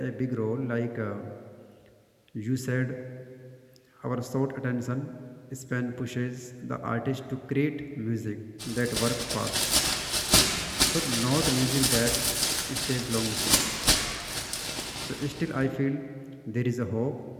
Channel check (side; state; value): both; identical; correlation 1.00